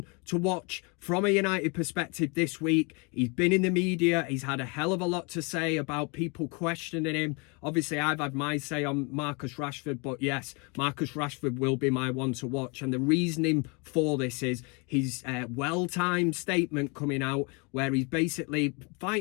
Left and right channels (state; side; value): quieter; right; 31.3 dB